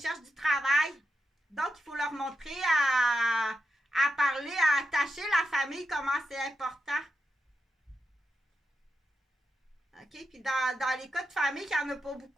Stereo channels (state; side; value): normal; both; correlation 0.88